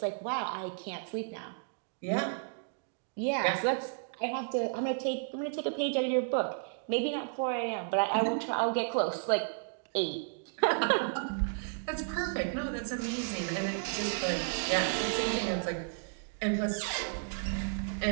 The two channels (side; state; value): left; silent; digital silence